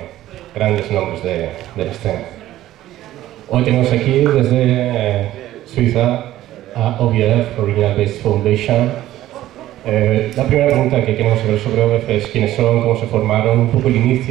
grandes nombres de la escena. Hoy tenemos aquí desde Suiza a O.B.F, Original Based Foundation. La primera pregunta que queremos saber sobre O.B.F es quiénes son, cómo se formaron, un poco el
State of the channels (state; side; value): quieter; left; 14.2 dB